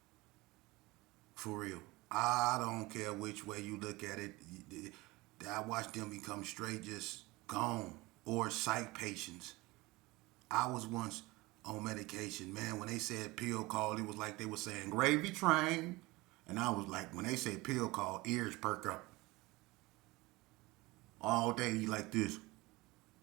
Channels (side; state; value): left; quieter; 21.7 dB